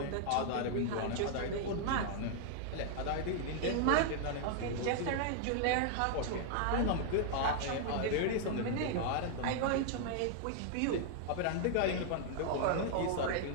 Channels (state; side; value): different; both; correlation -0.01